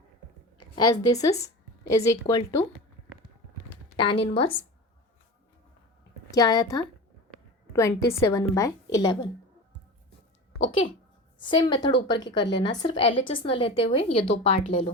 as this is equal to tan inverse क्या आया था 27/11। ओके, सेम मेथड ऊपर की कर लेना, सिर्फ LHS न लेते हुए ये दो पार्ट ले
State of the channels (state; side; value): normal; both; correlation 0.30